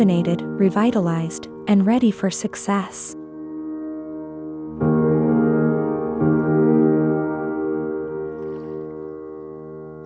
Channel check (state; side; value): identical; both; correlation 1.00